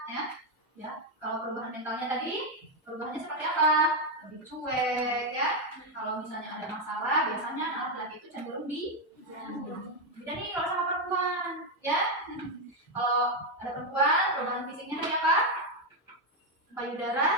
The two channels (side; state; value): both; normal; correlation 0.04